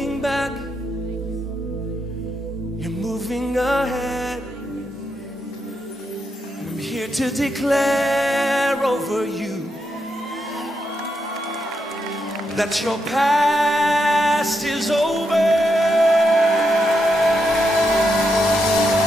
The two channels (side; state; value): both; normal; correlation 0.82